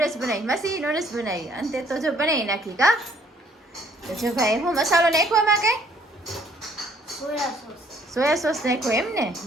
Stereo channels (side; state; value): both; normal; correlation 0.62